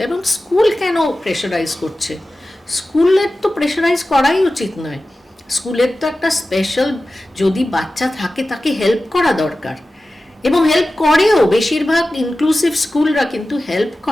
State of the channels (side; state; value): both; normal; correlation 0.95